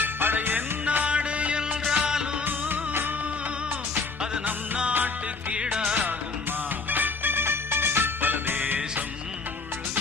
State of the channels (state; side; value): quieter; right; 4.2 dB